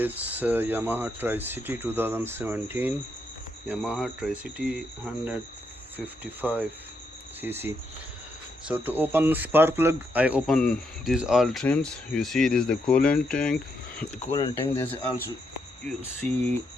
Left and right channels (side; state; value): both; normal; correlation 0.79